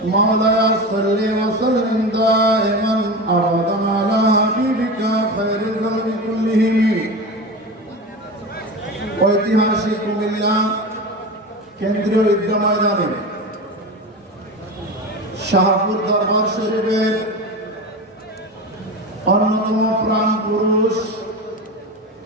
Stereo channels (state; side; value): normal; both; correlation 0.26